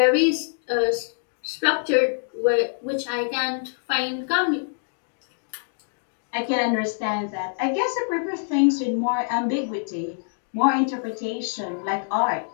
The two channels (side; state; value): right; silent; digital silence